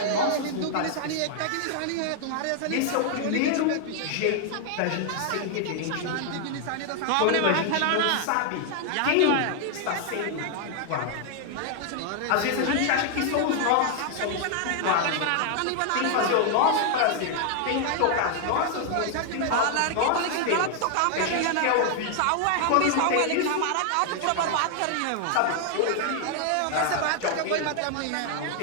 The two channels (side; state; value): both; different; correlation 0.00